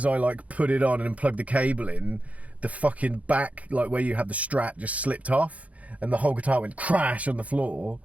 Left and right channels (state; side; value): late; left; 0.068 ms